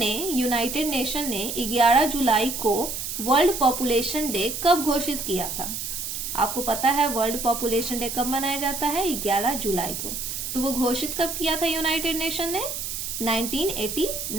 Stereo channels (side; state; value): right; noise; hiss, 5 dB below the sound